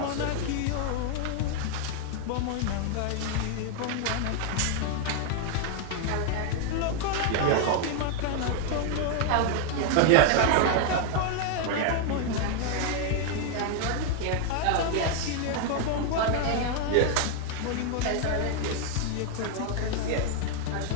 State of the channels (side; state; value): both; different; correlation 0.00